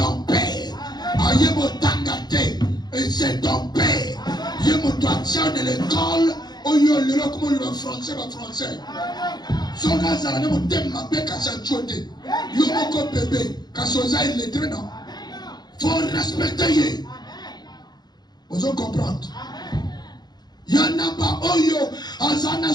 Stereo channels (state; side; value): late; right; 0.20 ms